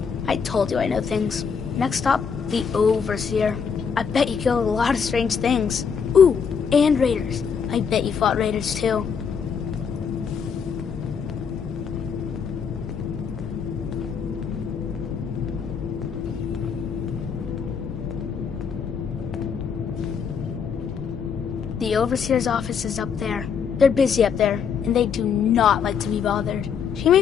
I told you I know things. Next stop, the Overseer. I bet you killed a lot of strange things. Ooh, and raiders. I bet you fought raiders too. The Overseer's office is up there. They're busy up there, and they do not like to be bothered. She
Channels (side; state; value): right; quieter; 6.6 dB